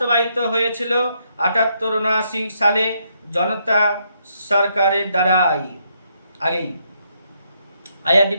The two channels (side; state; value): both; inverted; correlation -0.76